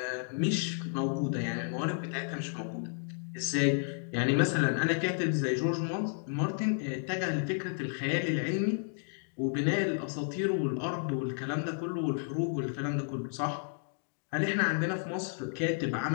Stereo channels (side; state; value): right; silent; digital silence